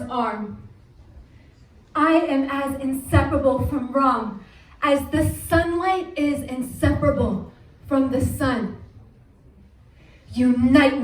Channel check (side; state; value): both; identical; correlation 1.00